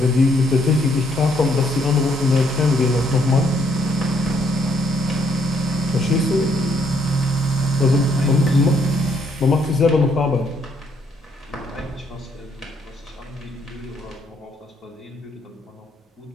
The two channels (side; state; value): both; normal; correlation 0.70